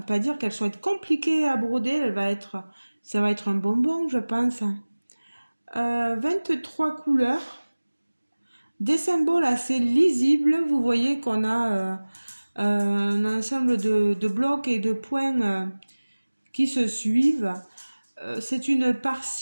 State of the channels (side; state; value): both; inverted; correlation -1.00